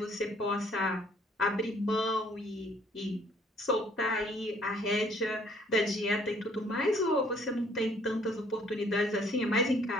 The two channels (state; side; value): normal; both; correlation 0.61